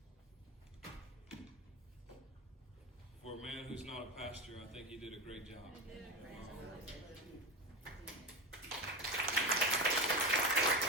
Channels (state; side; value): normal; both; correlation 0.20